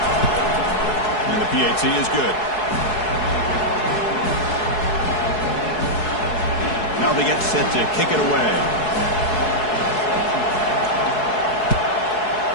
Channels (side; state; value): right; late; 4.7 ms